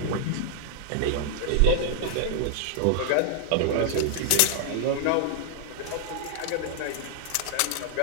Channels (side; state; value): both; different; correlation -0.01